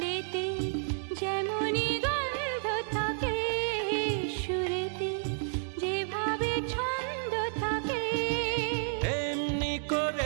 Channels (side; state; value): left; silent; digital silence